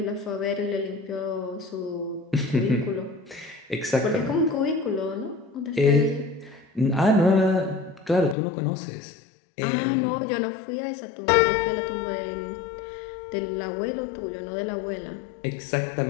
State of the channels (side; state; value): right; drops out; at 8.3 s